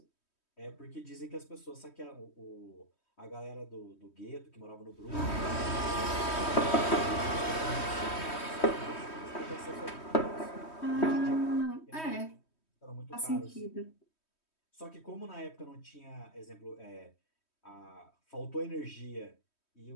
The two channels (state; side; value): late; right; 3.1 ms